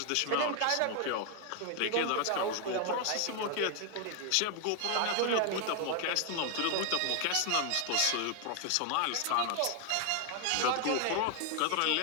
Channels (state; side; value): different; both; correlation 0.00